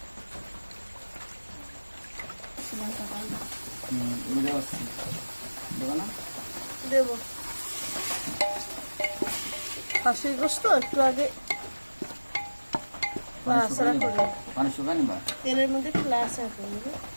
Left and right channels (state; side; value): inverted; both; correlation -1.00